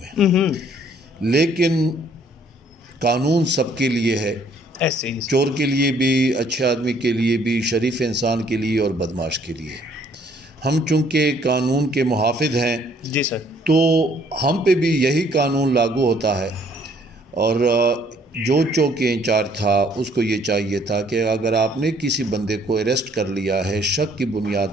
हैं। लेकिन कानून सबके लिए है, ऐसे ही चोर के लिए भी, अच्छे आदमी के लिए भी, शरीफ इंसान के लिए और बदमाश के लिए। हम चूँकि कानून के मुहाफिज हैं जी सर, तो हम पे भी यही कानून लागू होता है। और जो चौकी इंचार्ज था उसको ये चाहिए था कि अगर आपने किसी बंदे को अरेस्ट कर लिया है शक की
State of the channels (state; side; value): normal; both; correlation 0.62